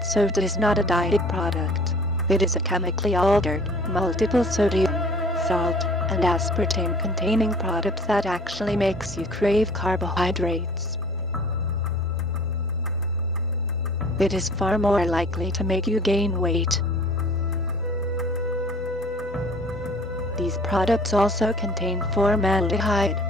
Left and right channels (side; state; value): both; normal; correlation 0.49